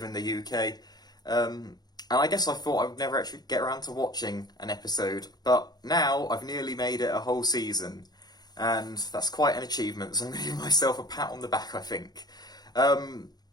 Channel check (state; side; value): late; right; 0.19 ms